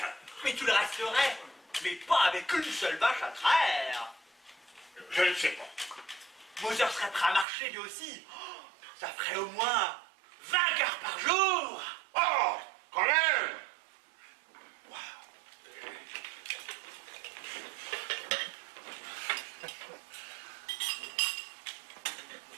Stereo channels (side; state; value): left; drops out; at 7.5 s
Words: Mais tu le resterais, mais pas avec une seule vache à traire. Je ne sais pas. Moser serait prêt à marcher lui aussi. Oh, ça ferait au moins 20 heures par jour. Oh, quand même.